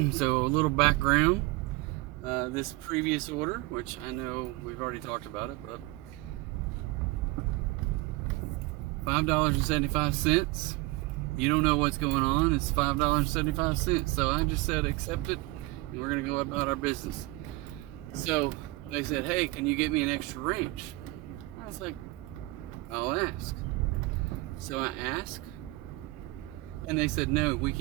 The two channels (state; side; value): quieter; left; 22.0 dB